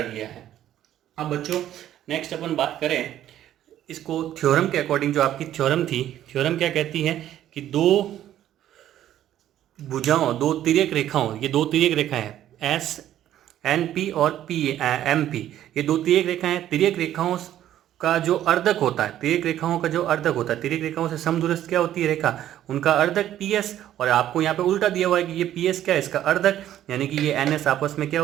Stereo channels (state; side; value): quieter; left; 12.0 dB